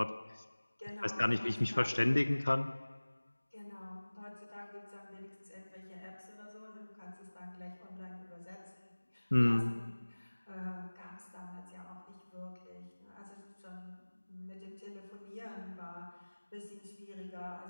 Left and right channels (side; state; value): both; inverted; correlation -1.00